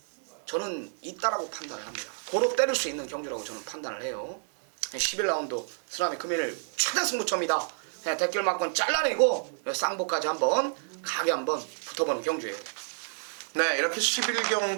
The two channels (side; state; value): left; silent; digital silence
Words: 저는 있다라고 판단을 합니다. 고로 때릴 수 있는 경주라고 저는 판단을 해요. 11라운드 쓰나미 금일 최대 승부처입니다. 대길 막건 잘라내고 쌍복까지 한번 가게 한번 붙어보는 경주예요. 네, 이렇게